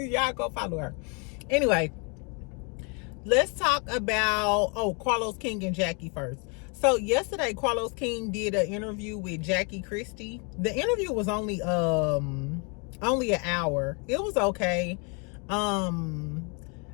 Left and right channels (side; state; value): right; quieter; 34.2 dB